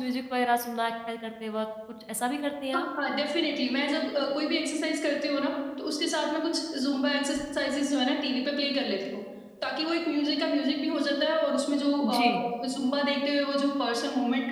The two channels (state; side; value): identical; both; correlation 1.00